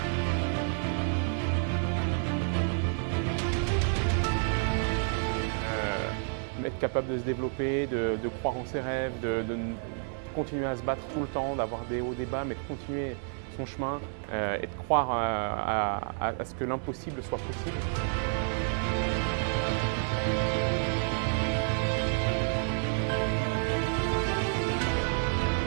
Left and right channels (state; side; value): silent; left; 58 dB below the other